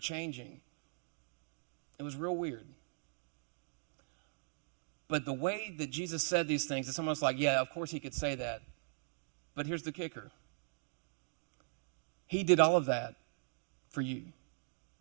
It was real weird. But the way that Jesus said these things, it's almost like, yeah, of course he could say that. But here's the kicker. He did all of that for you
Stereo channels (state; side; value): silent; left; digital silence